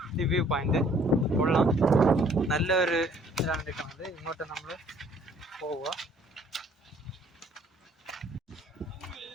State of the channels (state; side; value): normal; both; correlation 0.59